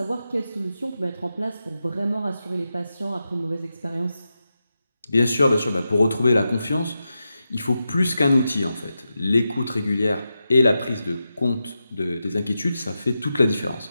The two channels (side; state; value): both; inverted; correlation -0.90